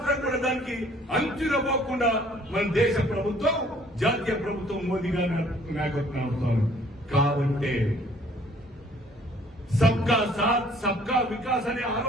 కూడా దానికి అంచునపోకుండా మన దేశ ప్రభుత్వం, జాతీయ ప్రభుత్వం మోదీ గారి నాయకత్వం అవుతారు. కాబట్టి సబ్కా సాత్ సబ్కా వికాస్ అనే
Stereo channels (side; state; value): both; normal; correlation 0.58